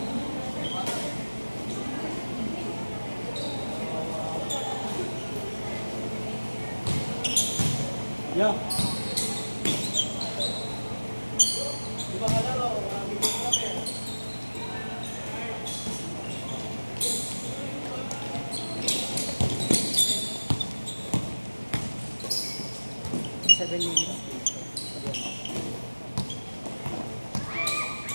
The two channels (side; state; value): both; inverted; correlation -1.00